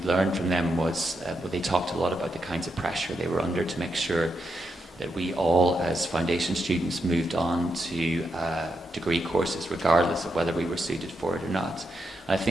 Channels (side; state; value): both; normal; correlation 0.83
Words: learned from them was they talked a lot about the kinds of pressure they were under to make sure that we all, as foundation students, moved on to degree courses, regardless of whether we were suited for it or not. And I